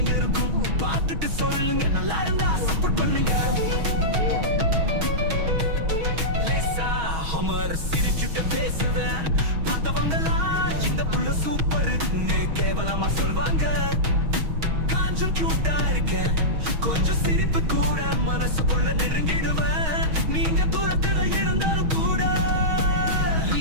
இருக்கும், பார்த்துட்டு சொல்லுங்க. நல்லா இருந்தா சப்போர்ட் பண்ணுங்க. லேசா ஹமர் சிரிச்சுட்டு பேசுவேன், பார்த்தவங்கலாம் இந்த புள்ள சூப்பர்னு கேவலமா சொல்வாங்க. கொஞ்சம் கியூட்டா இருக்கேன், கொஞ்சம் சிரிப்பு கூட மனசுக்குள்ள நெருங்கிடுவேன். நீங்க தூரத்துல இருந்தாலும் கூட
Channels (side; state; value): left; late; 6.3 ms